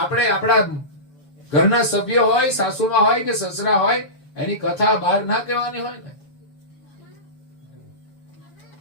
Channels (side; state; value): right; late; 7.1 ms